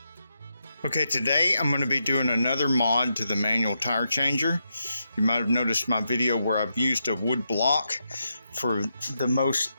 Okay, today I'm going to be doing another mod to the manual tire changer. You might have noticed my video where I've used a wood block for the most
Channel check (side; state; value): both; inverted; correlation -0.84